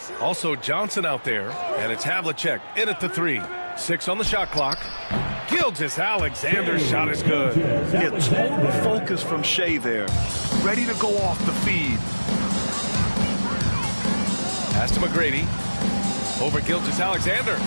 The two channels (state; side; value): inverted; both; correlation -1.00